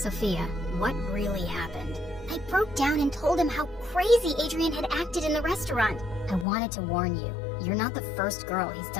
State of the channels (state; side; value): drops out; right; at 6.5 s